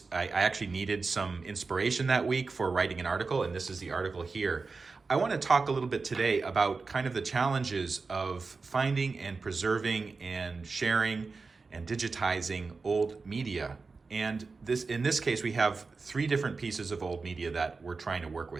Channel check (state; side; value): quieter; left; 4.3 dB